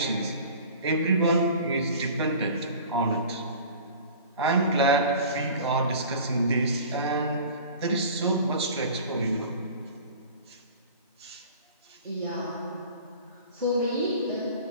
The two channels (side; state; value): both; inverted; correlation -0.41